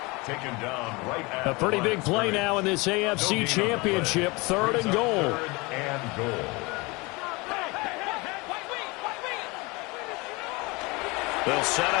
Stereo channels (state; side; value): quieter; right; 25.5 dB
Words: Taken down right at A pretty big play now in this AFC Championship. Third and goal. Third and goal. They'll set